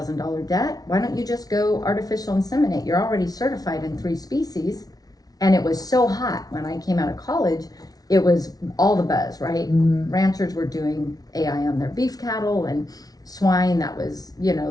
debt. Why don't you just go artificial inseminate? You're already certified in 3 species. And it was so hot when I came out of college, it was all the buzz, right? Ranchers were doing AI on their beef cattle, and swine that was,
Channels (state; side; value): late; right; 0.18 ms